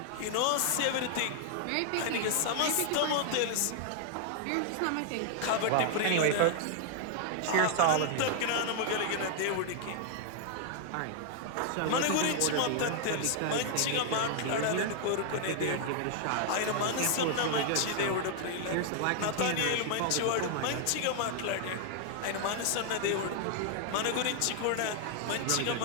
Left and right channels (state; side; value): different; both; correlation 0.00